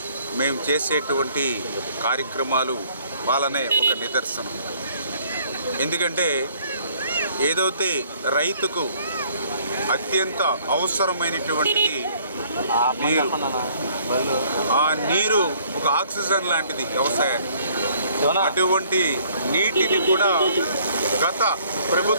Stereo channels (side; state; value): both; inverted; correlation -0.60